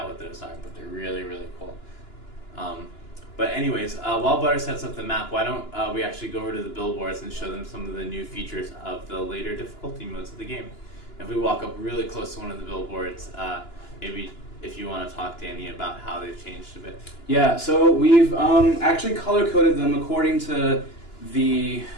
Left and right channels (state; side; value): late; right; 2.9 ms